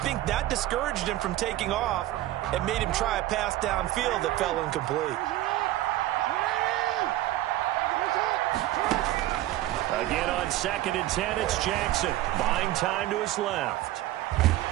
think that discouraged him from taking off and made him try a pass downfield that fell incomplete. Again on 2nd and 10, it's Jackson. Buying time to his left.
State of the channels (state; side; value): quieter; left; 15.3 dB